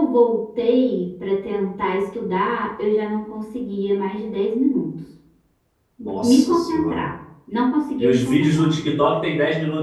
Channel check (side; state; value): both; identical; correlation 1.00